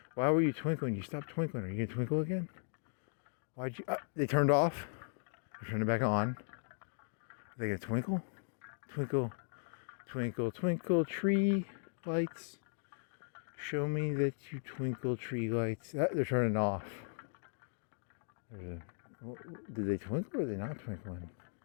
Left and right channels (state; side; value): silent; right; digital silence